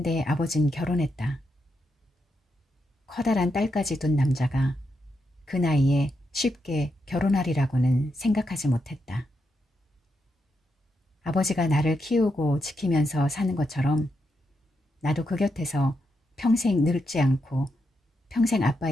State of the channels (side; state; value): both; normal; correlation 0.83